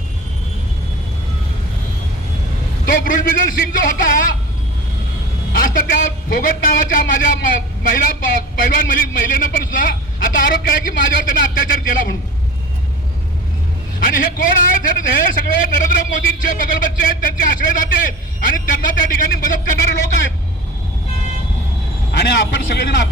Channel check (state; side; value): normal; both; correlation 0.35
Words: तो ब्रुजबिजल सिंग जो होता, आज तर त्या फोगट नावाच्या माझ्या महिला पैलवान महिलेनं पण सुद्धा आता आरोप केला की माझ्यावर त्यानं अत्याचार केला म्हणून. आणि हे कोण आहेत? हे सगळे नरेंद्र मोदींचे बगलबच्चे आहेत, त्यांचे आश्रयदाते आहेत आणि त्यांना त्या ठिकाणी मदत करणारे लोक आहेत. आणि आपण सगळेजण